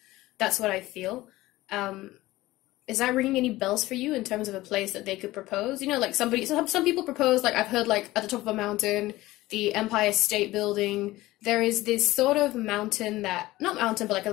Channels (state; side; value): quieter; right; 17.8 dB